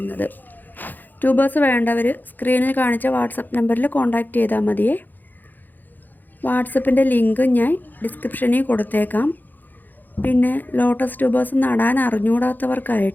ട്യൂബേഴ്സ് വേണ്ടവർ സ്ക്രീനിൽ കാണിച്ച വാട്സപ്പ് നമ്പറിൽ കോൺടാക്റ്റ് ചെയ്താൽ മതിയേ. വാട്സപ്പിൻ്റെ ലിങ്ക് ഞാൻ ഡിസ്ക്രിപ്ഷനിൽ കൊടുത്തേക്കാം. പിന്നെ ലോട്ടസ് ട്യൂബേഴ്സ് നടാൻ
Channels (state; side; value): late; right; 0.087 ms